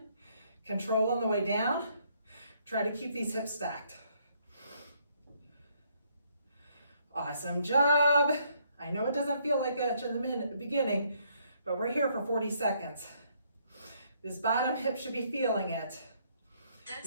Control on the way down. Try to keep these hips stacked. Awesome job. I know it doesn't feel like it in the beginning, but we're here for 40 seconds. This bottom hip should be feeling it.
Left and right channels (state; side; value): inverted; both; correlation -0.69